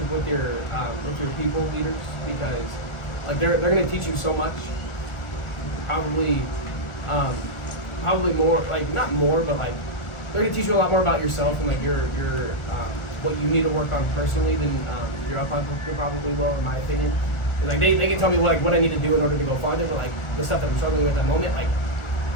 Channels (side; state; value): right; late; 1.4 ms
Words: with your people leaders, because like they're gonna teach you so much. Probably more, like not more, but like they're gonna teach you a lot more about yourself and like your what you need to work on personally than your upline probably will, in my opinion. And, like they can tell me what I need to do in order to go farther, but like the stuff that I'm struggling with at that moment, like